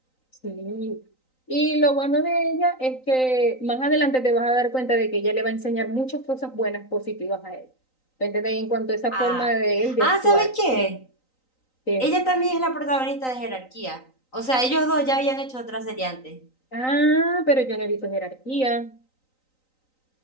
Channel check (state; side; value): late; right; 3.9 ms